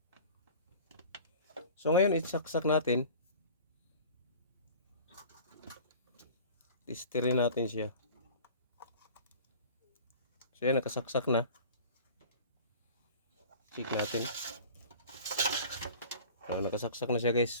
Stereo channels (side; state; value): both; inverted; correlation -0.42